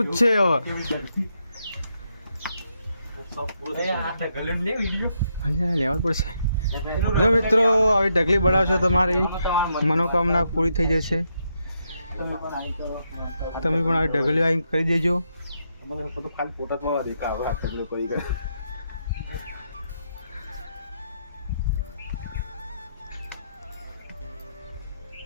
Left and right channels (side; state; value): both; inverted; correlation -0.80